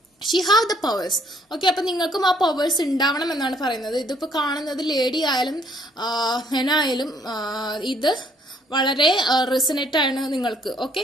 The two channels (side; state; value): both; normal; correlation 0.65